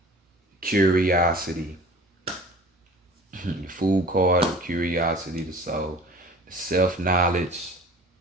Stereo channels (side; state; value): both; normal; correlation 0.43